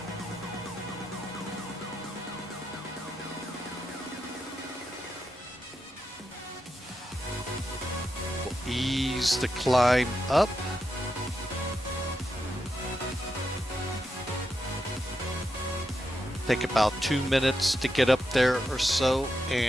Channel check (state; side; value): normal; both; correlation 0.86